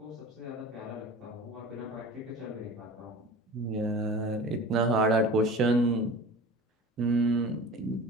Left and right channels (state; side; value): normal; both; correlation 0.37